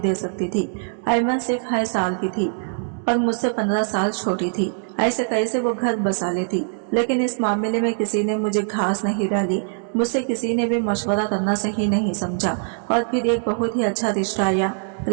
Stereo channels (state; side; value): silent; left; digital silence